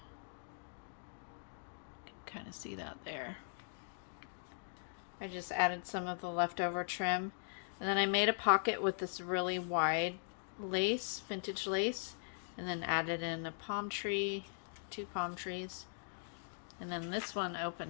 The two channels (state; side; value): silent; right; digital silence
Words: You can kind of see that there. I just added some of the leftover trim. And then I made a pocket with this really wide lace, vintage lace, and then added in a palm tree, 2 palm trees. And then this one